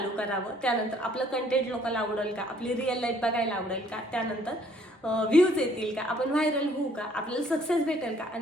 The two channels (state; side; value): normal; both; correlation 0.61